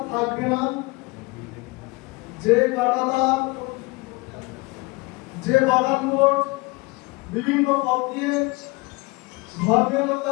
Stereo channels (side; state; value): right; quieter; 25.0 dB